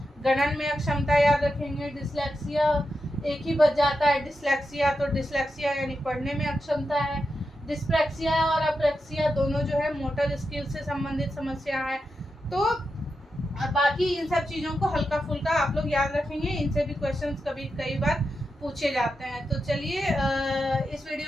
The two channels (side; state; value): both; normal; correlation 0.88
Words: गणन में अक्षमता याद रखेंगे। डिस्लेक्सिया एक ही बच जाता है, डिस्लेक्सिया, तो डिस्लेक्सिया यानी पढ़ने में अक्षमता है। डिस्प्रैक्सिया और अप्रैक्सिया दोनों जो है मोटर स्किल से संबंधित समस्या है। तो बाकी इन सब चीज़ों को हल्का फुल्का आप लोग याद रखेंगे, इनसे भी क्वेश्चंस कई बार पूछे जाते हैं। तो चलिए इस